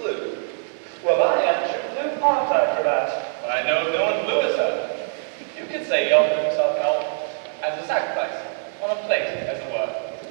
Well, I am true blue, aren't I, Cravat? I know no one bluer, sir. You could say he offered himself help as a sacrifice, on a plate, as it were.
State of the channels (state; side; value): silent; left; 63 dB below the other